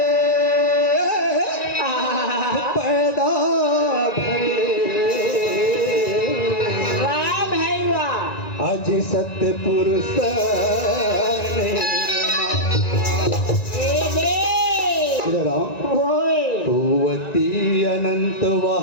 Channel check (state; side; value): late; right; 1.9 ms